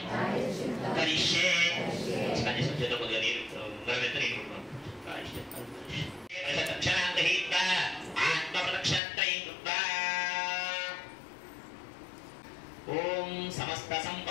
కరిష్యే. కొద్దిగా నీరు ఓం సమస్త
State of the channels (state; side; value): drops out; right; at 9.0 s